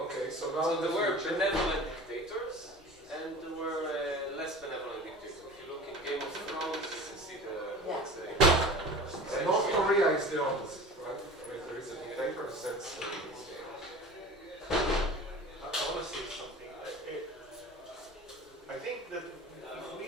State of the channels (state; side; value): normal; both; correlation 0.38